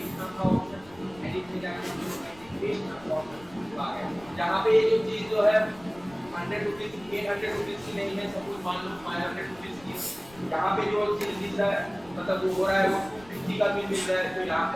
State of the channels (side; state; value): left; noise; rumble, 23 dB below the sound